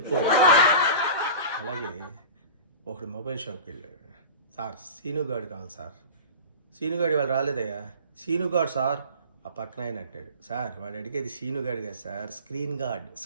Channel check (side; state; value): both; inverted; correlation -0.36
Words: అలాగే ఒకడు మొబైల్ షాప్కి వెళ్ళాడు. సార్ సీనుగాడు కావాలి సార్. సీనుగాడు వాళ్ళు రాలేదయ్యా. సీనుగాడు సార్. ఆ పక్కన ఆయన అంటాడు, సార్ వాడు అడిగేది సీనుగాడు కాదు సార్, స్క్రీన్ గార్డ్.